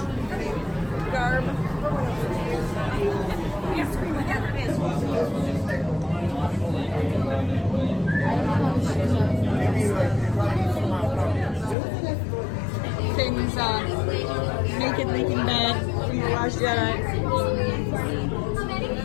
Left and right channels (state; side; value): drops out; right; at 11.8 s